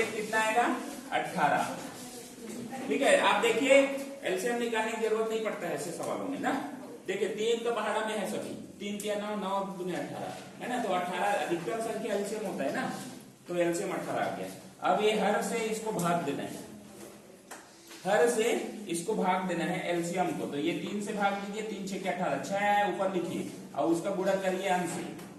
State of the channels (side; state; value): both; identical; correlation 1.00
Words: कितना आएगा? 18। ठीक है, आप देखिए एलसीएम निकालने की जरूरत नहीं पड़ता है ऐसे सवालों में ना। देखिए 3 तो पहाड़ा में है सभी, 3 3 9 9 दूनी 18 है ना, तो 18 अधिकतम संख्या एलसीएम होता है ना, तो एलसीएम 18 आ गया। अब ये हर से इसको भाग देना है, हर से इसको भाग देना है एलसीएम को, तो ये 3 से भाग दीजिए, 3 6 18, 6 है ऊपर लिखिए और उसका गुणा करिए अंश से,